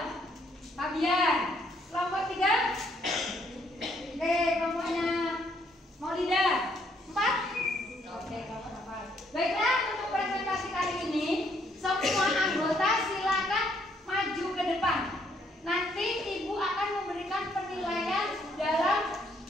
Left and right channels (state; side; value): normal; both; correlation 0.69